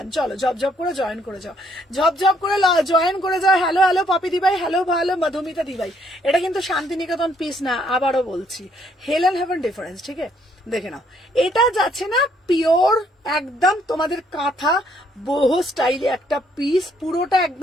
চলো ঝপঝপ করে জয়েন করে যাও, ঝপঝপ করে জয়েন করে যাও। হ্যালো পপি দিবাই, হ্যালো মধুমিতা দিবাই, এটা কিন্তু শান্তিনিকেতন পিস না, আবারও বলছি, হেল এন্ড হেভেন ডিফারেন্স। ঠিক আছে, দেখে নাও, এটা যাচ্ছে না পিওর একদম তোমাদের কাঁথা বহু স্টাইলে একটা পিস, পুরোটা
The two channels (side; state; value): both; normal; correlation 0.68